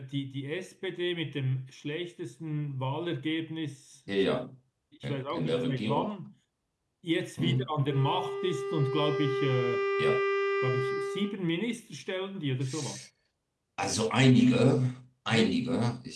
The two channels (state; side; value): identical; both; correlation 1.00